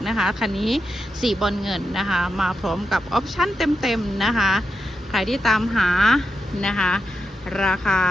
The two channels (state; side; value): normal; both; correlation 0.87